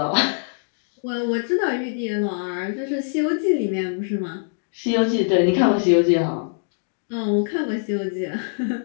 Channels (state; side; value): silent; right; digital silence